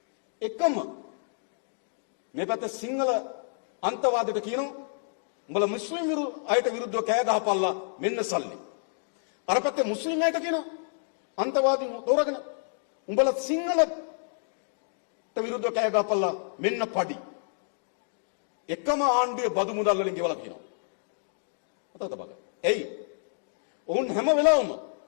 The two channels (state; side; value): silent; right; digital silence